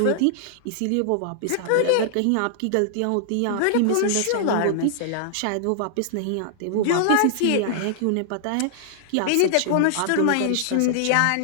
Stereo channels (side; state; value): both; different; correlation -0.01